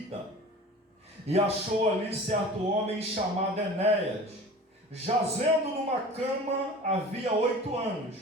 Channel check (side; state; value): both; normal; correlation 0.39